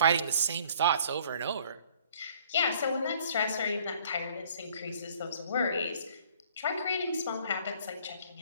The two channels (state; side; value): inverted; both; correlation -0.56